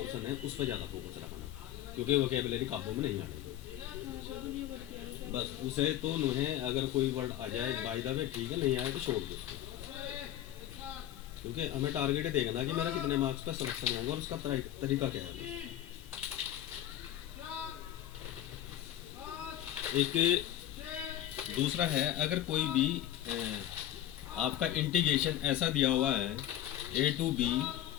है उस पर ज़्यादा फोकस रखना, क्योंकि वोकेबुलरी काबू में नहीं आने। हाँ सर दुनिया भर की है बस उसे तो नुहें अगर कोई वर्ड आ जाए बाय द वे ठीक है, नहीं आए तो छोड़ दो उसको। क्योंकि हमें टारगेट है देखना कि मेरा कितने मार्क्स का सिलेक्शन होगा और उसका तरीका क्या है। एक दूसरा है, अगर कोई भी आपका इंटीग्रेशन ऐसा दिया हुआ है a to b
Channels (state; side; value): quieter; right; 12.4 dB